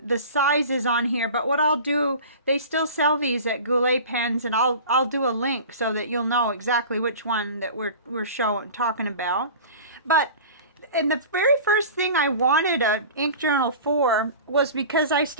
the size is on here. But what I'll do, they still sell these at Goulet Pens, and I'll do a link so that you'll know exactly which one that we're talking about. But and the very first thing I wanted an ink journal for was because I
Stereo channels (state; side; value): inverted; both; correlation -0.37